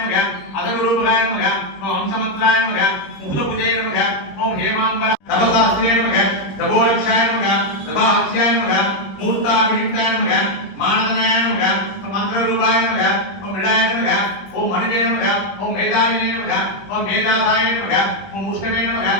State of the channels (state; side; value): late; right; 21 ms